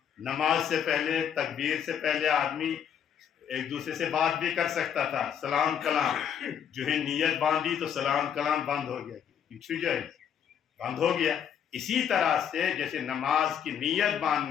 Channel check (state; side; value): quieter; right; 8.5 dB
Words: نماز سے پہلے تکبیر سے پہلے آدمی ایک دوسرے سے بات بھی کر سکتا تھا، سلام کلام، جو ہے نیت باندھی تو سلام کلام بند ہو گیا، جائے بند ہو گیا۔ اسی طرح سے جیسے نماز کی نیت